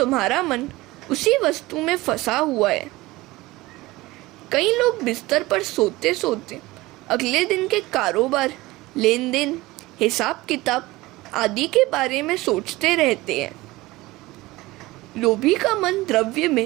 मन उसी वस्तु में फंसा हुआ है। कई लोग बिस्तर पर सोते सोते अगले दिन के कारोबार, लेन देन, हिसाब किताब आदि के बारे में सोचते रहते हैं। लोभी का मन द्रव्य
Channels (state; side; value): quieter; left; 19.7 dB